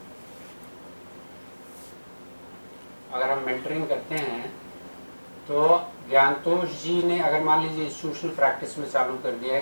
अगर हम मेंटरिंग करते हैं तो ज्ञानतोष जी ने अगर मान लीजिए इंस्टीट्यूशनल प्रैक्टिस में चालू कर दिया है,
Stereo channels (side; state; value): both; inverted; correlation -1.00